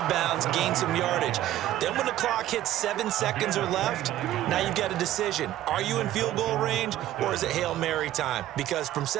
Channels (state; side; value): quieter; left; 13.5 dB